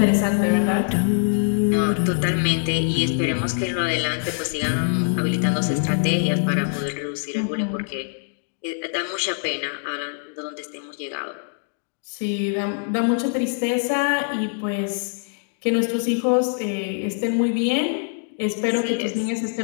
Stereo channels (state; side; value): silent; right; 63 dB below the other